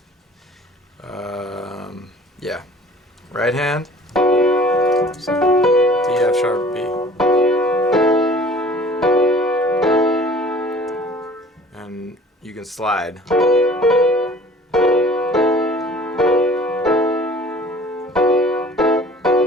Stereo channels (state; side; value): normal; both; correlation 0.49